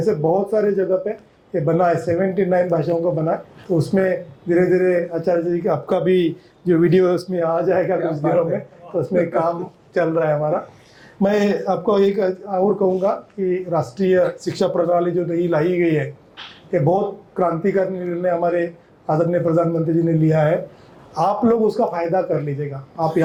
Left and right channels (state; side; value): identical; both; correlation 1.00